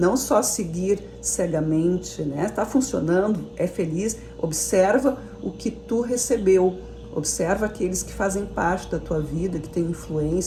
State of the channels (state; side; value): identical; both; correlation 1.00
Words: só seguir cegamente, né? Tá funcionando, é feliz, observa o que tu recebeu. Observa aqueles que fazem parte da tua vida, que têm